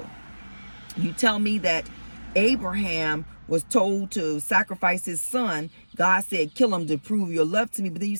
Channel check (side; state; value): both; inverted; correlation -1.00